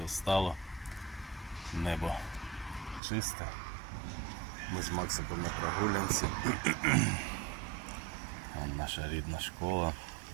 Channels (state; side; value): drops out; left; at 3.0 s